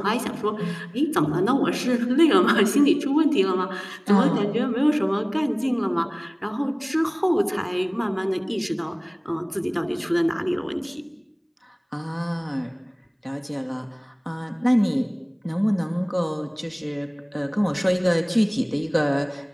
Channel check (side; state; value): both; identical; correlation 1.00